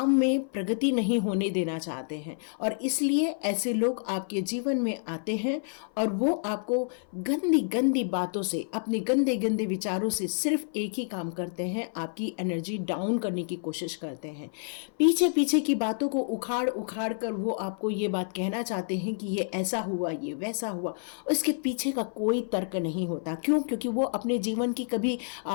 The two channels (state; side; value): silent; right; 57 dB below the other